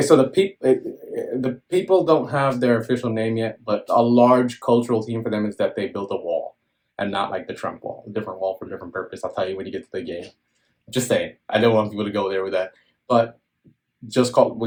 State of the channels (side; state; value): both; identical; correlation 1.00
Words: So the people don't have their official name yet, but a large cultural theme for them is that they built a wall, and not like the Trump wall, a different wall for a different purpose. I'll tell you when you get to the game. Just saying. I don't want people to go there with that, but